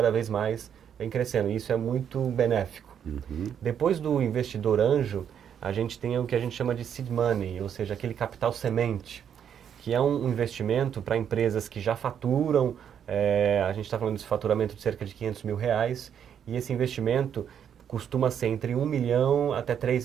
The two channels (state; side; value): quieter; left; 8.6 dB